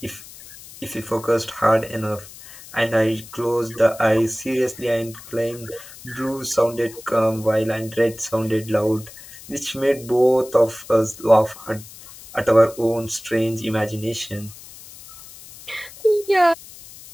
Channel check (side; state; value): left; noise; hiss, 18 dB below the sound